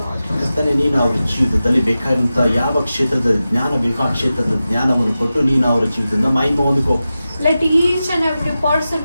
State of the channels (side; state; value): both; inverted; correlation -0.94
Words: Lord. ಕರ್ತನೆ ನೀನು ಅವರ ಜೀವಿತದಲ್ಲಿ ಬೇಕಾದಂತ ಯಾವ ಕ್ಷೇತ್ರದ ಜ್ಞಾನ ಬೇಕೋ ಆ ಕ್ಷೇತ್ರದ ಜ್ಞಾನವನ್ನು ಕೊಟ್ಟು ನೀನು ಅವರ ಜೀವಿತದಿಂದ ಮಹಿಮೆ ಹೊಂದಿಕೋ. Let each and every person